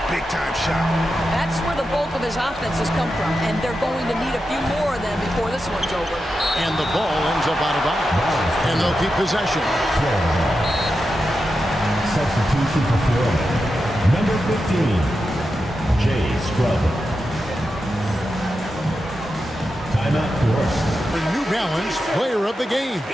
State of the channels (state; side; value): normal; both; correlation 0.89